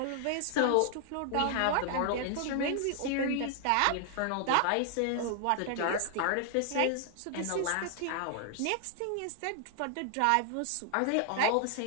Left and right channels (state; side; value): different; both; correlation 0.00